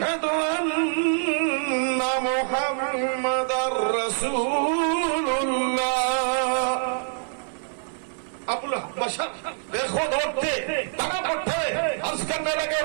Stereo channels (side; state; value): left; silent; 62 dB below the other